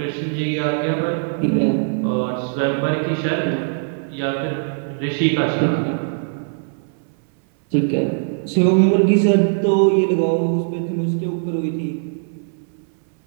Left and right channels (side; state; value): left; silent; 62 dB below the other